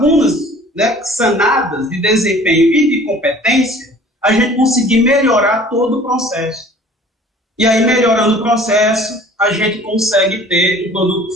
né, sanadas de desempenho e de competência, a gente conseguir melhorar todo o processo. E aí, melhorando o processo, a gente consegue ter um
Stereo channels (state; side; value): normal; both; correlation 0.49